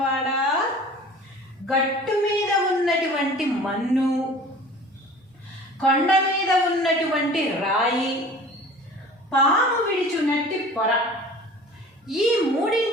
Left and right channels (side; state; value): both; normal; correlation 0.44